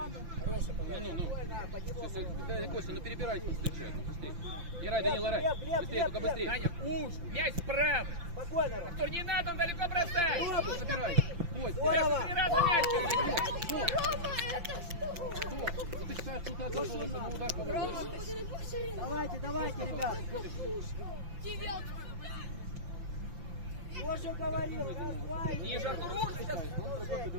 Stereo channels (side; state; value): left; late; 5.8 ms